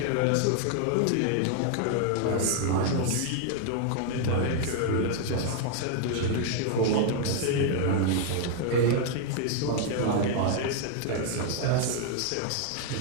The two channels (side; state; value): both; different; correlation 0.00